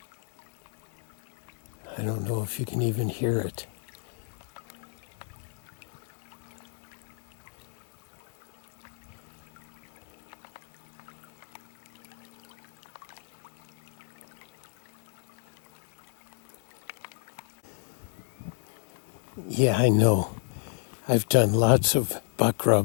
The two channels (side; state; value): right; silent; 57 dB below the other